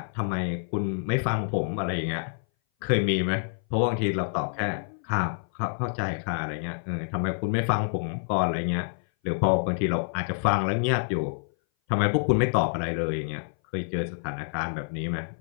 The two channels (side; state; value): right; silent; 58 dB below the other